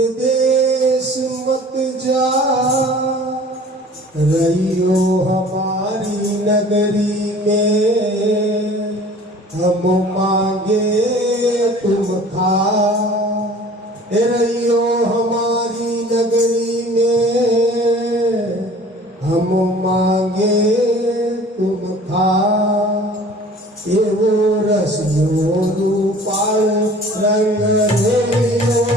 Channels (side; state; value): both; normal; correlation 0.47